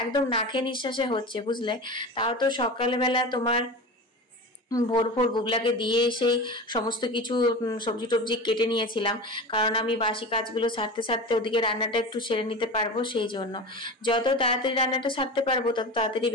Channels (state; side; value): normal; both; correlation 0.29